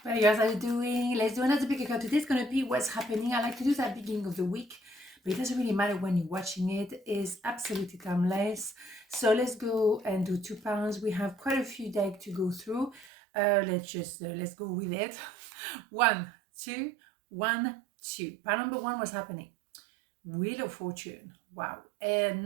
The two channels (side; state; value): left; drops out; at 13.1 s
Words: Hey guys, how you doing? Let's do another pick. Today's gonna be what's happening. I like to do that beginning of the week, but it doesn't really matter when you're watching it. It's absolutely timeless. So let's go and do £2. We have quite a few decks to go through. Let's go with it. 1, 2, 1, 2. Pile number 1, what's happening? Wheel of Fortune. Wow. And